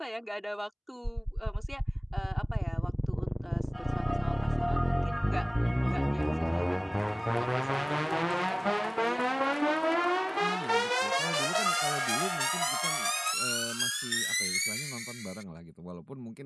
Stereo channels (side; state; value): both; identical; correlation 1.00